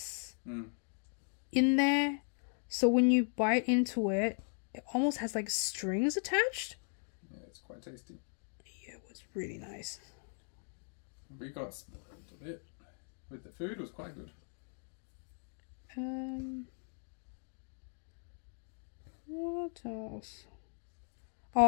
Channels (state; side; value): silent; right; 53 dB below the other